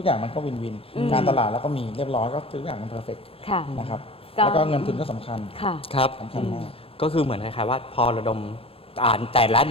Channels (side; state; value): right; late; 0.27 ms